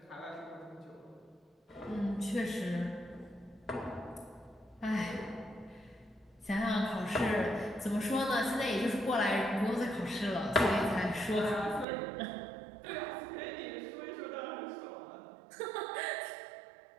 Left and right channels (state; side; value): drops out; left; at 11.9 s